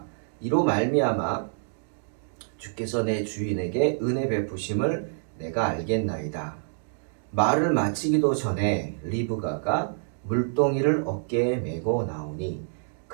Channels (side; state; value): left; silent; digital silence